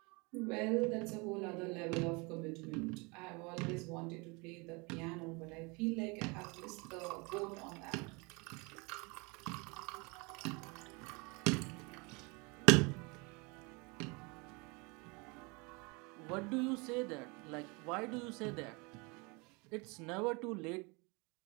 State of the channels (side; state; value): left; quieter; 28.6 dB